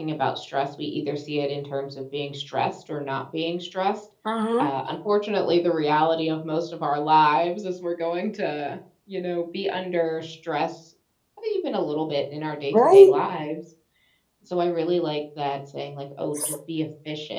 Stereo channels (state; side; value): identical; both; correlation 1.00